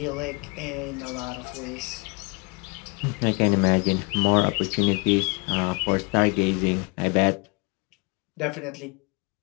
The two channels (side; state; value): right; quieter; 30.7 dB